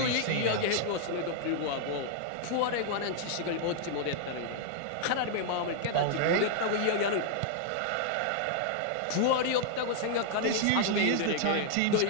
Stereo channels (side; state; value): both; different; correlation -0.01